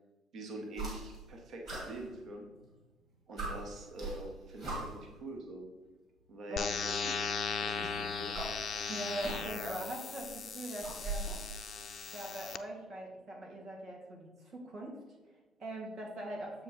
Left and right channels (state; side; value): normal; both; correlation 0.59